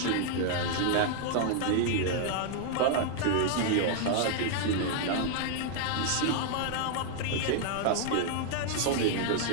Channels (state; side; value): different; both; correlation 0.00